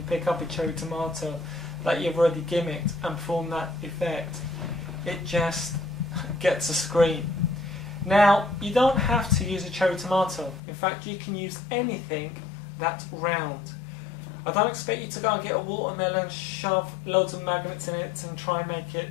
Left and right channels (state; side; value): drops out; right; at 10.6 s